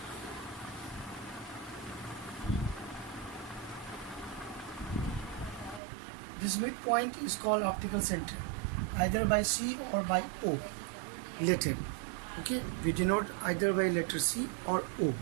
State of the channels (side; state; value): left; drops out; at 5.8 s